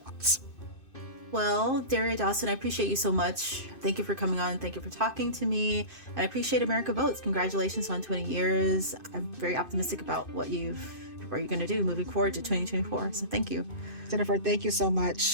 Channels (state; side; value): late; right; 2.5 ms